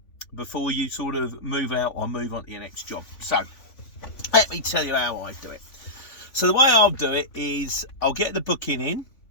before you sort of move out or move on to your next job? So, let me tell you how I do it. So, the way I'll do it is I'll get the booking in,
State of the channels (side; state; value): right; late; 3.5 ms